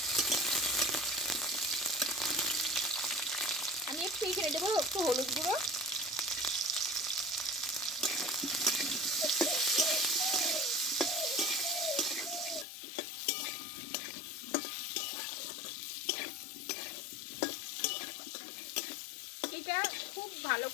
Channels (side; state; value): right; drops out; at 12.7 s